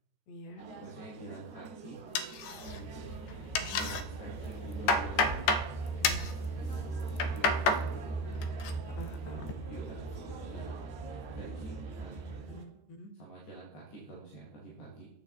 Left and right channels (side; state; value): right; late; 14 ms